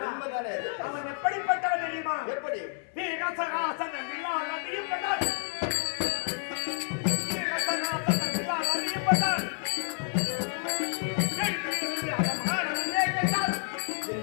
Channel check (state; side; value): silent; right; 58 dB below the other